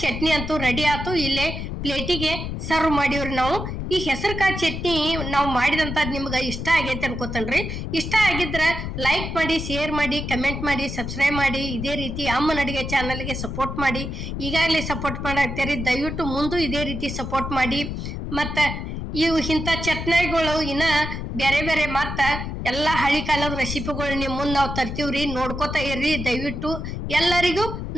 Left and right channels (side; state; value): left; noise; rumble, 5 dB below the sound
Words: ಚಟ್ನಿ ಅಂತೂ ರೆಡಿ ಆಯ್ತು. ಇಲ್ಲೇ ಪ್ಲೇಟಿಗೆ ಸರ್ವ್ ಮಾಡಿವ್ರಿ ನಾವು. ಈ ಹೆಸರು ಕಾಳು ಚಟ್ನಿ ನಾವು ಮಾಡಿದಂಥದ್ದು ನಿಮ್ಗೆ ಇಷ್ಟ ಆಗೈತೆ ಅನ್ಕೋತನ್ರಿ. ಇಷ್ಟ ಆಗಿದ್ರ ಲೈಕ್ ಮಾಡಿ, ಶೇರ್ ಮಾಡಿ, ಕಮೆಂಟ್ ಮಾಡಿ, ಸಬ್ಸ್ಕ್ರೈಬ್ ಮಾಡಿ. ಇದೇ ರೀತಿ ಅಮ್ಮನ ಅಡಿಗೆ ಚಾನಲ್ಗೆ ಸಪೋರ್ಟ್ ಮಾಡಿ. ಈಗಾಗಲೇ ಸಪೋರ್ಟ್ ಮಾಡಾಕ್ತೀರಿ, ದಯವಿಟ್ಟು ಮುಂದೆ ಇದೇ ರೀತಿ ಸಪೋರ್ಟ್ ಮಾಡಿ. ಮತ್ತು ಇವು ಇಂಥ ಚಟ್ನಿಗಳು ಇನ್ನ ಬೇರೆ ಬೇರೆ ಮತ್ತ ಎಲ್ಲಾ ಹಳಿ ಕಾಲದ ರೆಸಿಪಿಗಳು ನಿಮ್ ಮುಂದ್ ನಾವು ತರ್ತೀವ್ರಿ. ನೋಡ್ಕೋತಾ ಇರ್ರಿ ದಯವಿಟ್ಟು. ಎಲ್ಲರಿಗೂ